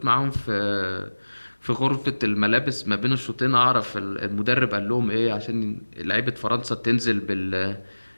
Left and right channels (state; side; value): inverted; both; correlation -1.00